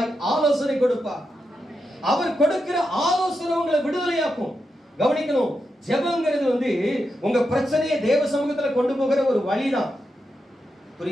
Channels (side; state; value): both; normal; correlation 0.86